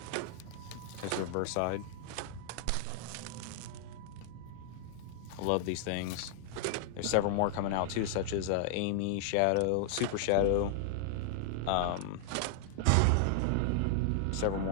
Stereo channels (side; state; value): both; different; correlation -0.01